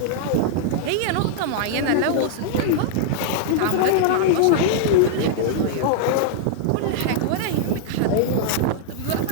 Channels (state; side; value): different; both; correlation -0.01